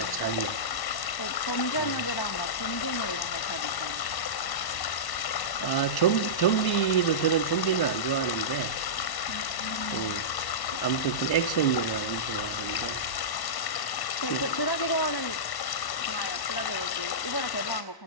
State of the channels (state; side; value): late; right; 1.1 ms